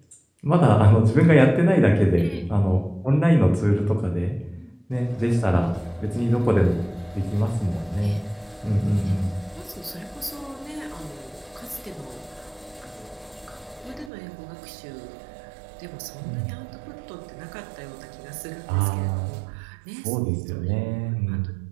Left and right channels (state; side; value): drops out; left; at 14.1 s